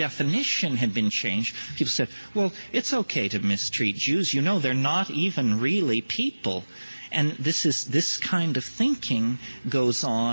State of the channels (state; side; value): inverted; both; correlation -1.00